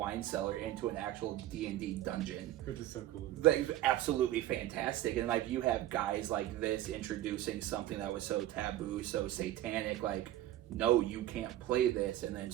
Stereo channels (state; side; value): quieter; left; 13.8 dB